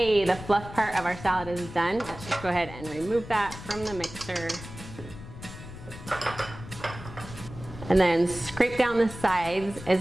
the fluff part of our salad is done. Let's just go ahead and remove that from the mixer. And then scrape down the sides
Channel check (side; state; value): left; noise; rumble, 13 dB below the sound